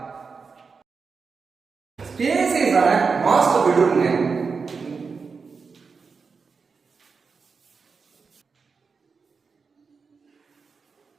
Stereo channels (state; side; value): quieter; left; 5.1 dB